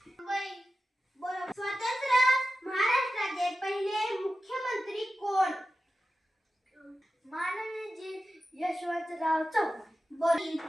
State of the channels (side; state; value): both; normal; correlation 0.93